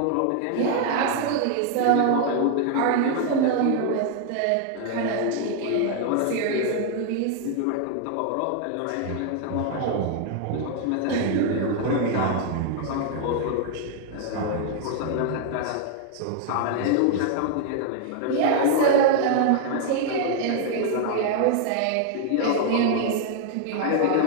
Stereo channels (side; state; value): both; different; correlation 0.00